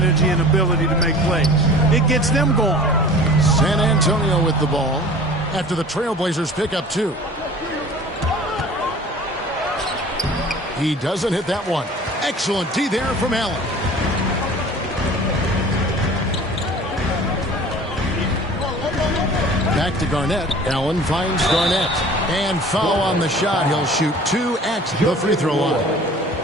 and ability to make plays. It gets them going. San Antonio with the ball after the Trailblazers pick up 2. He doesn't hit that one. Excellent D there from Allen. Back to Garnett. Allen finds Garnett. And foul on the shot. He'll shoot 2 at the free throw line.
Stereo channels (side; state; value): both; normal; correlation 0.44